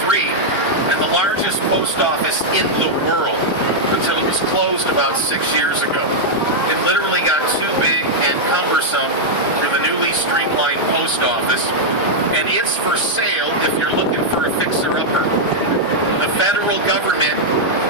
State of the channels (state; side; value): normal; both; correlation -0.04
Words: and the largest post office in the world until it was closed about 6 years ago. It literally got too big and cumbersome for the newly streamlined post office, and it's for sale if you're looking for a fixer-upper. The federal government